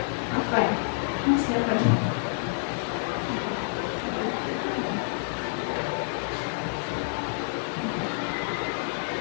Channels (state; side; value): silent; right; digital silence